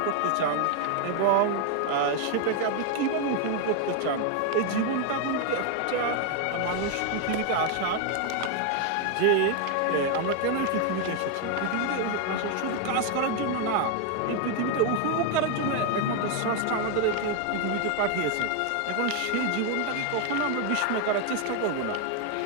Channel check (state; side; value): different; both; correlation 0.01